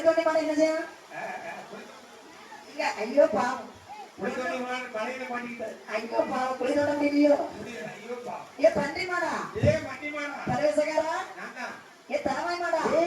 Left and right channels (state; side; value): identical; both; correlation 1.00